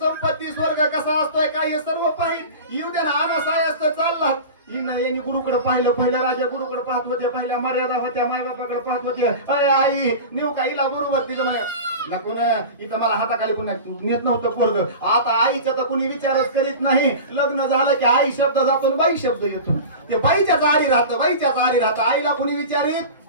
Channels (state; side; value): inverted; both; correlation -0.32